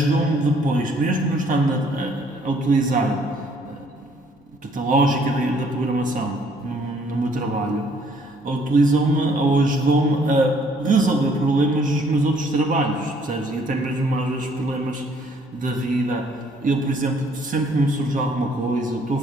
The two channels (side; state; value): both; normal; correlation 0.63